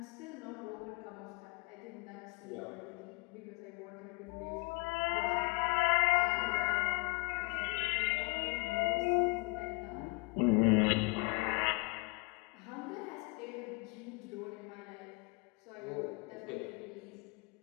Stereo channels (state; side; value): quieter; right; 28.9 dB